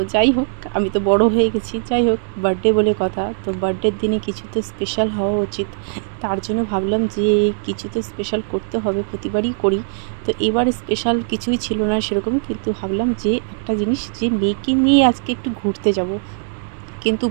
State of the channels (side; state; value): left; silent; digital silence